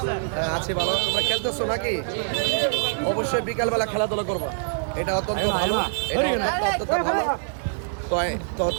আছি ভালো। তোমরা খেলতেছো নাকি? অবশ্যই বিকালবেলা খেলাধুলা করবা, এটা অত্যন্ত ভালো, এটা অত্যন্ত ভালো। তো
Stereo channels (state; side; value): silent; left; digital silence